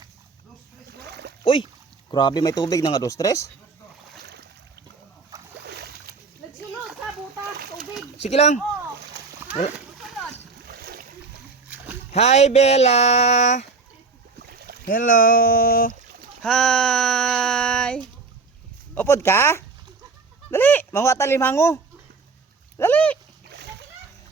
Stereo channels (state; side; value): quieter; left; 4.4 dB